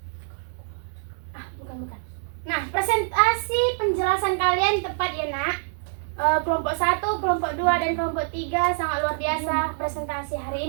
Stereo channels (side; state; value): left; silent; digital silence